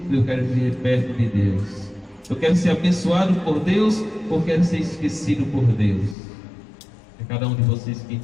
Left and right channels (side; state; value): right; drops out; at 6.2 s